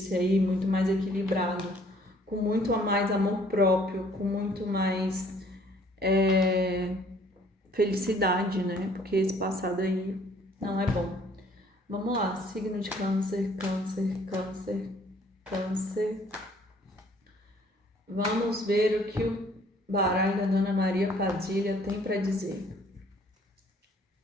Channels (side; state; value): both; normal; correlation 0.59